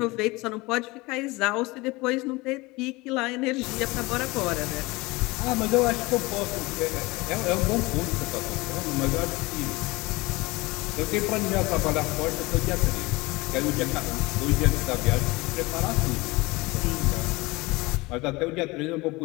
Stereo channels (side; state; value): right; quieter; 22.8 dB